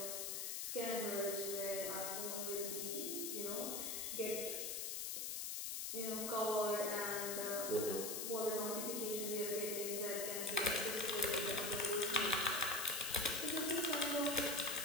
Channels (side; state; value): left; noise; hiss, 2 dB below the sound